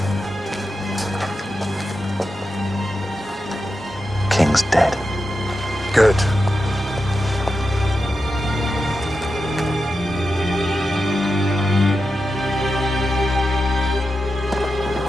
King's dead. Good.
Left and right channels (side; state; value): both; normal; correlation 0.89